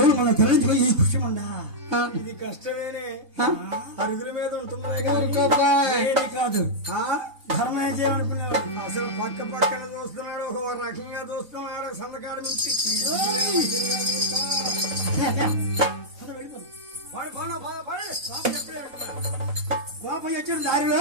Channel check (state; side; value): late; left; 3.5 ms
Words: మనం తరలించుకొని ఈ కృష్ణమండా. ఇది కష్టమేనే, అరుగుల మీద ఉంటుంది కాదు. ధర్మం చేయమనుకున్నాడు. అసలు పక్కన చూస్తున్నాడు, ఒక రకంగా చూస్తున్నాడు. సందకాడు నుంచి గోపయ్య వచ్చాడు